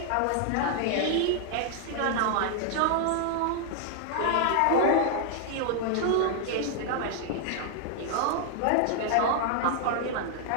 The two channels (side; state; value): both; different; correlation 0.00